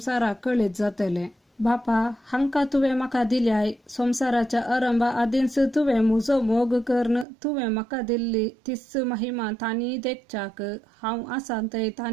कळीत जातलें. बापा, हांकां तुवें म्हाका दिल्याय. संवसाराच्या आरंभा आदींच तुवें म्हजो मोग करून तुवें म्हाका दिल्ली तीच महिमा तांणी देखच्याक हांव आसां थंय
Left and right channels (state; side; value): drops out; left; at 7.2 s